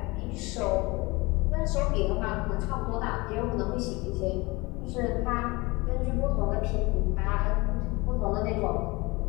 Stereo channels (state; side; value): quieter; right; 24.0 dB